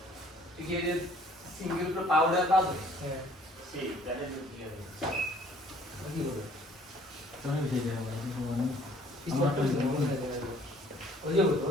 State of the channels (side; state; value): both; normal; correlation 0.57